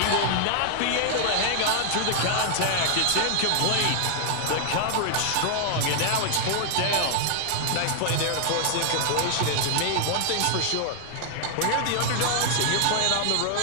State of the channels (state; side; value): different; both; correlation 0.00